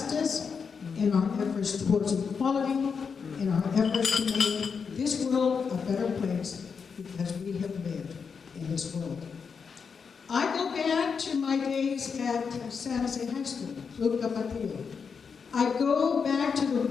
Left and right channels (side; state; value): right; quieter; 5.9 dB